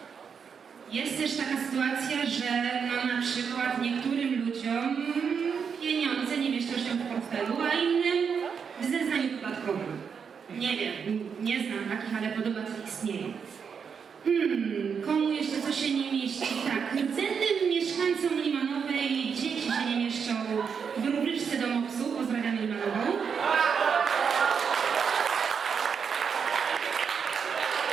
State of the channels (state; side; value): quieter; left; 6.5 dB